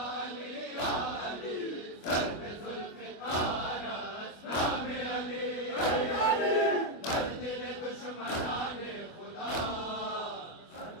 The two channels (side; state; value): right; late; 25 ms